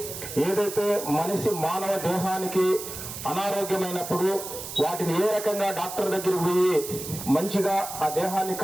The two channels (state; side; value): noise; right; hiss, 9 dB below the sound